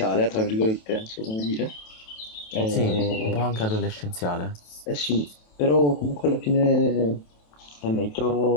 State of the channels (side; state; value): right; late; 27 ms